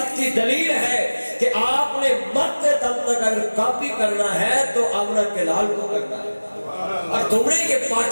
کی دلیل ہے کہ آپ نے مرتے دم تک اگر کاپی کرنا ہے تو آمنہ کے لال کو کرنا ہے. اور تم نے یہ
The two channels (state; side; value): inverted; both; correlation -1.00